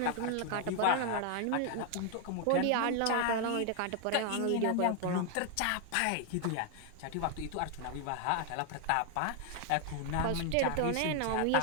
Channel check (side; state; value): both; different; correlation 0.00